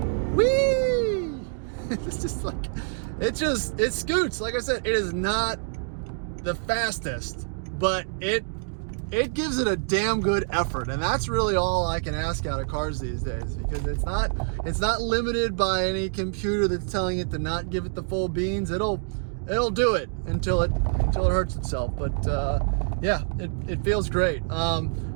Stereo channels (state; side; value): silent; left; digital silence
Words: Whee! It's just like, it scoots. Like I said, it is not the fastest, but it gives it a damn good effort, and that's really all I can ask out of cars these days, because it's not limited by any computer that's telling it to not give it the full beans. It'll do it until it hurts itself. But yeah, it feels great.